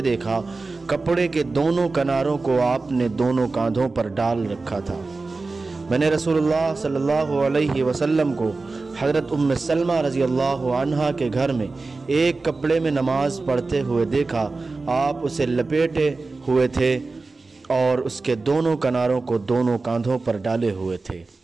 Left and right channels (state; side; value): quieter; left; 3.7 dB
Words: देखा। कपड़े के दोनों किनारों को आपने दोनों कांधों पर डाल रखा था। मैंने रसूलुल्लाह सल्लल्लाहु अलैहि वसल्लम को हज़रत उम्मे सलमा रज़ियल्लाहु अन्हा के घर में एक कपड़े में नमाज पढ़ते हुए देखा। आप उसे लपेटे हुए थे और उसके दोनों किनारों को दोनों कांधों पर डाले हुए थे।